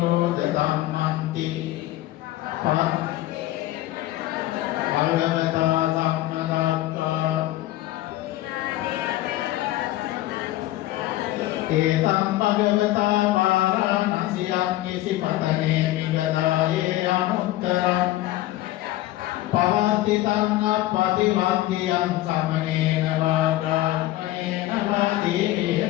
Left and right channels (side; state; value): right; quieter; 15.8 dB